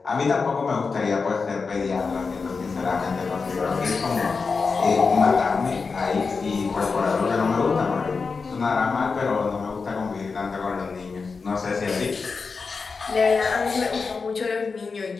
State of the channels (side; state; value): right; quieter; 4.7 dB